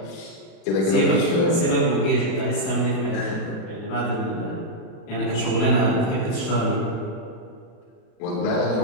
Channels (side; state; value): right; late; 36 ms